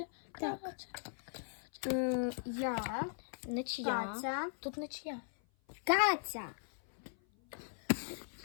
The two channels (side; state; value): right; silent; 52 dB below the other